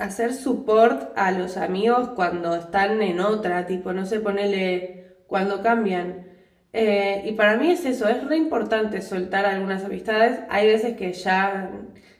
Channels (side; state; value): both; identical; correlation 1.00